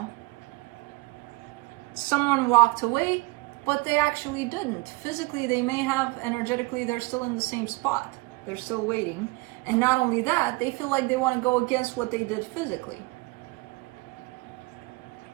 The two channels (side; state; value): left; quieter; 24.7 dB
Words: Someone walked away, but they actually didn't. Physically, they may have. Energetically, they're still in the same spot. They're still waiting. And not only that, they feel like they want to go against what they did physically.